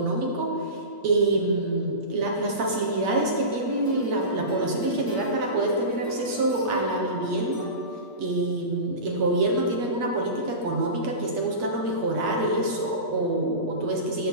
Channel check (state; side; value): late; left; 8.5 ms